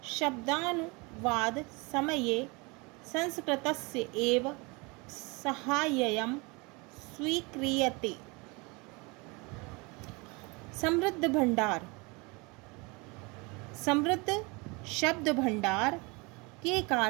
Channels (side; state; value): left; quieter; 27.4 dB